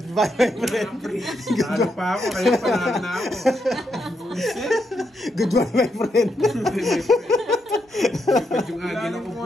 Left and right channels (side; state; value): both; normal; correlation 0.81